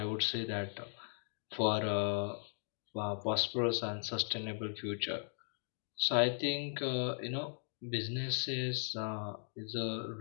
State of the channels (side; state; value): right; silent; digital silence